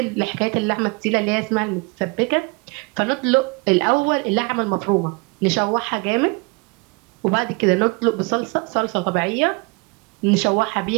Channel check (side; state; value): left; quieter; 29.0 dB